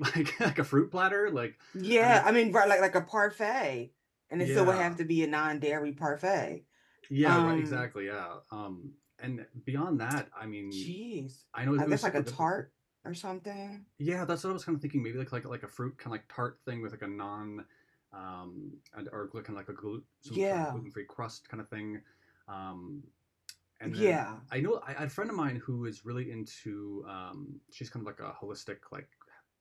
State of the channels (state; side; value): identical; both; correlation 1.00